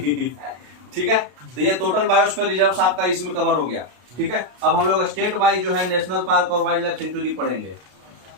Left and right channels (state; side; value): late; left; 32 ms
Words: ठीक है, तो ये टोटल बायोस्फीयर रिजर्व आपका इसमें कवर हो गया, ठीक है। अब हम लोग स्टेट वाइज जो है नेशनल पार्क और वाइल्ड लाइफ सेंचुरी पढ़ेंगे,